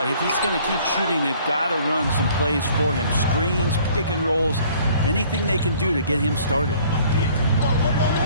if he's going to keep shooting, they've got to run some plays for him. Screens, pick and rolls, anything they can do to get him started.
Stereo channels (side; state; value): both; inverted; correlation -0.56